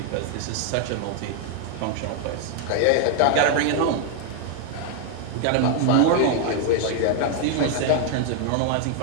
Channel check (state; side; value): different; both; correlation 0.00